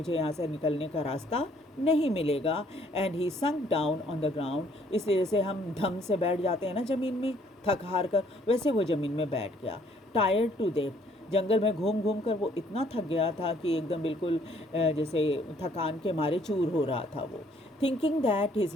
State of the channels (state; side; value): normal; both; correlation 0.63